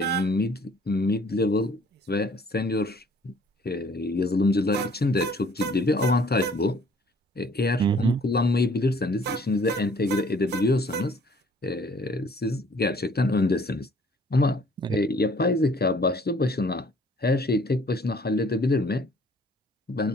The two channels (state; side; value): normal; both; correlation 0.57